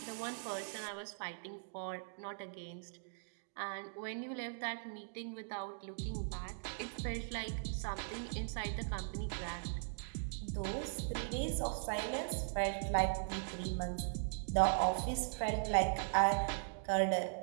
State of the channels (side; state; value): left; silent; digital silence